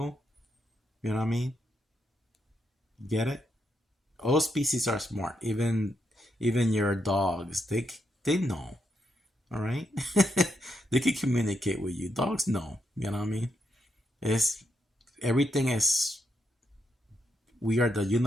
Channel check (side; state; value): both; normal; correlation 0.80